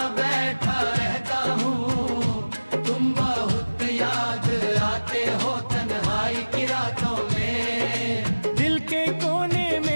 बैठा रहता हूँ, तुम बहुत याद आते हो तन्हाई की रातों में। दिल के कोने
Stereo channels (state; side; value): inverted; both; correlation -1.00